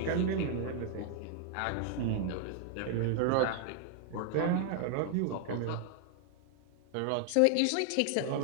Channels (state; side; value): different; both; correlation 0.00